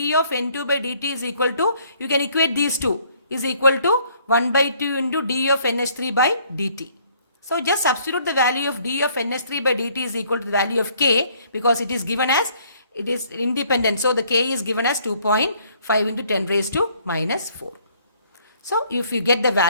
of N2 by dt is equal to, you can equate these two, is equal to 1 by 2 into d of NH3 by dt. So just substitute the value of d of NH3 by dt is equal to the value of k, because it is given as, it is independent. So the k is given as 2.5 into 10 raised to minus 4. So if you get the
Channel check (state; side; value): inverted; both; correlation -0.63